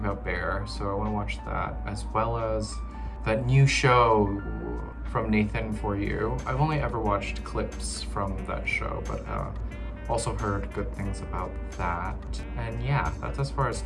Bear, so I want to watch that, as well as that new show from Nathan For You. I've only ever watched clips from that show, but also heard good things about that. And yeah, that's as far as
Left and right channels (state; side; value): identical; both; correlation 1.00